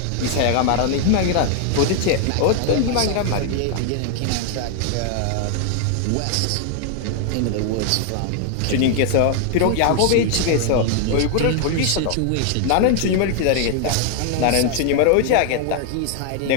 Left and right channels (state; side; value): different; both; correlation 0.00